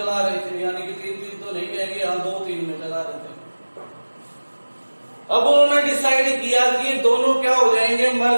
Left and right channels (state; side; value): inverted; both; correlation -1.00